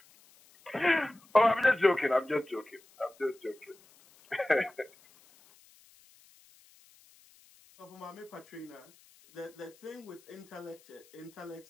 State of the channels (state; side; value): noise; left; hiss, 28 dB below the sound